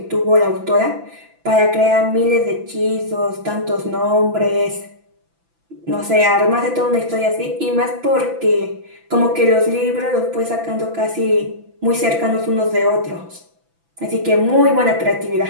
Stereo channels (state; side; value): late; left; 6.0 ms